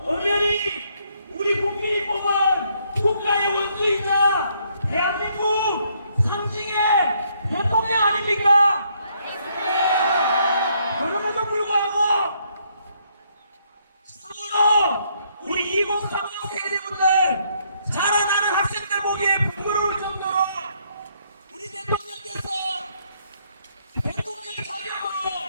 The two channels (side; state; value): both; inverted; correlation -0.71